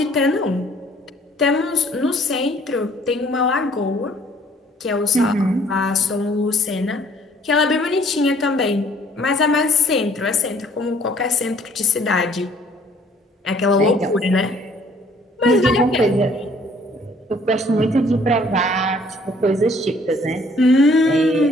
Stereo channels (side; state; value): both; normal; correlation 0.59